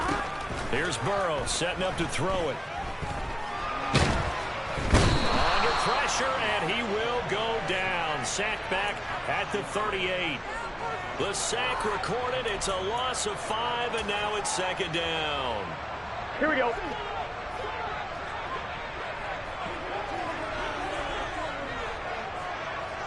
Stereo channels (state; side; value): identical; both; correlation 1.00